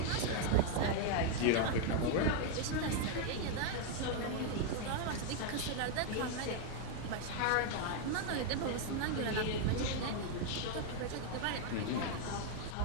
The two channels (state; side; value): different; both; correlation 0.00